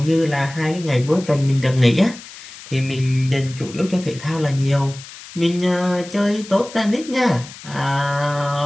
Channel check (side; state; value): left; noise; hiss, 16 dB below the sound